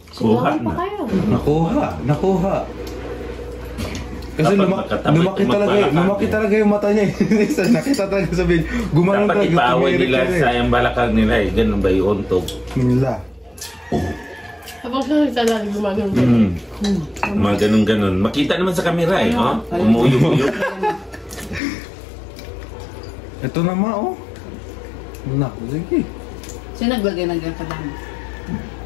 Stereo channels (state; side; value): drops out; right; at 21.6 s